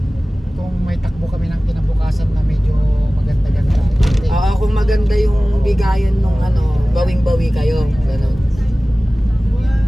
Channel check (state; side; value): normal; both; correlation 0.98